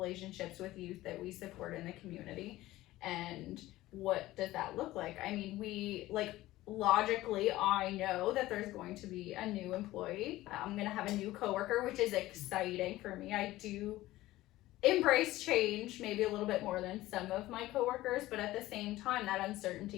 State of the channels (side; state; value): right; quieter; 16.7 dB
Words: with youth that we support in the community? And what does that look like? I mean, we like logically, I know that there's going to be a new employee. I'm going to have a new coworker, which is exciting for me. I do embrace change maybe a little bit more than some of my coworkers, but at the same time, that